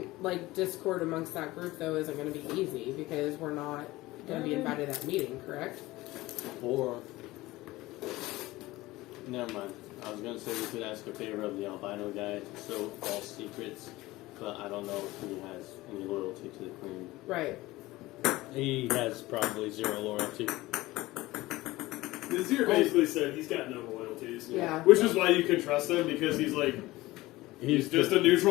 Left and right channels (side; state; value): right; quieter; 18.9 dB